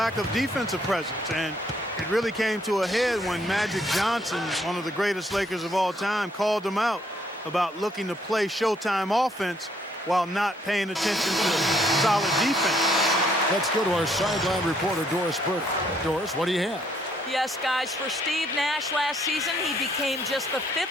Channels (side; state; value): both; normal; correlation 0.68